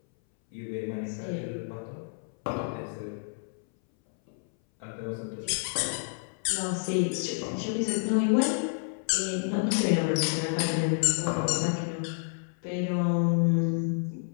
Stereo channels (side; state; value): right; silent; 58 dB below the other